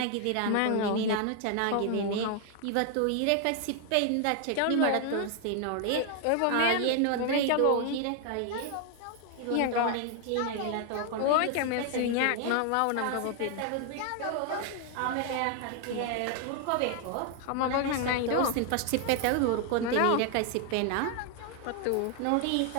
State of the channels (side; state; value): both; different; correlation 0.00